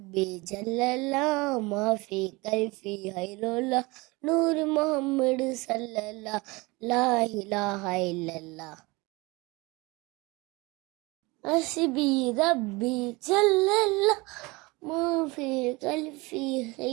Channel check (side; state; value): left; quieter; 24.1 dB